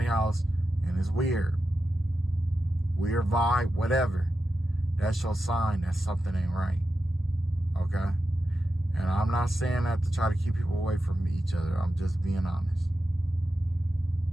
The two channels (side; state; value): both; normal; correlation 0.90